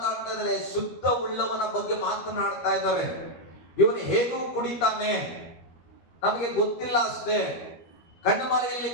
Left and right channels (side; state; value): right; late; 12 ms